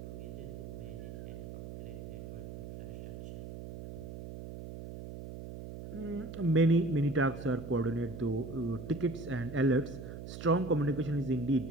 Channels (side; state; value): right; noise; hum, 10 dB below the sound